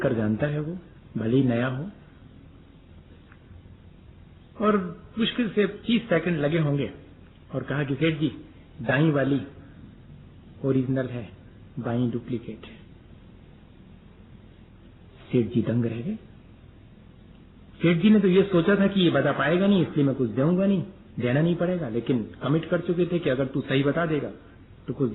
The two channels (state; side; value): identical; both; correlation 1.00